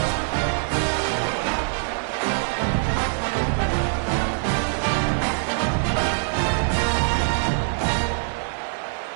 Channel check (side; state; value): left; silent; 58 dB below the other